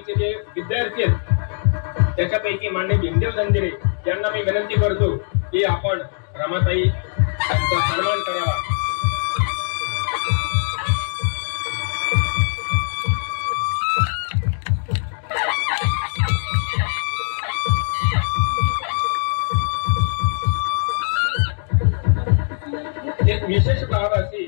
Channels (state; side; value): silent; right; digital silence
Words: जे विद्यार्थी आहेत त्याच्यापैकी मान्य भीमदेव जंजिरे यांना मी विनंती करतो की आपण रमाताई यांचा सन्मान करावा। विशेष बाब अशी